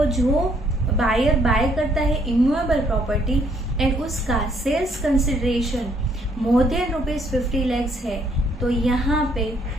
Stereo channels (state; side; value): normal; both; correlation 0.67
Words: जो बायर बाय करता है इमूवेबल प्रॉपर्टी एंड उसका sales consideration more than ₹50 lakhs है, तो यहाँ पे